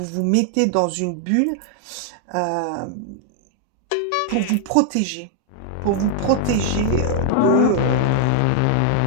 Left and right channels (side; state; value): both; different; correlation 0.00